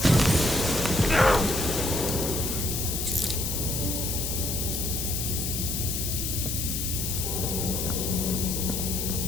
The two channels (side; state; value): left; noise; hiss, 2 dB below the sound